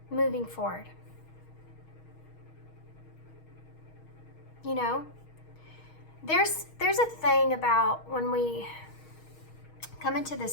moving forward. You know, there's a thing about when we come into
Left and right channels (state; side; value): late; right; 6.4 ms